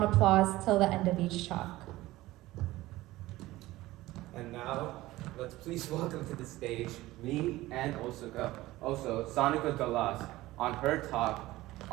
applause till the end of each talk. And now, let's please welcome to the stage me and also Sonica Galas on her talk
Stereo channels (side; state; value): left; quieter; 17.6 dB